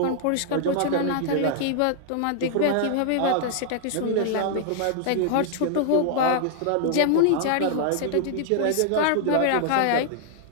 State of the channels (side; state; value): both; different; correlation -0.01